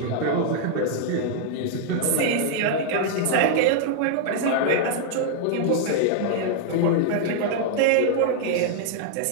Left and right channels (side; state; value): both; different; correlation -0.01